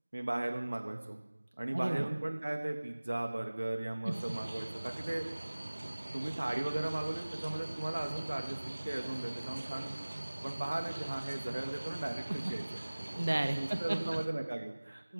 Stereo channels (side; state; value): both; inverted; correlation -1.00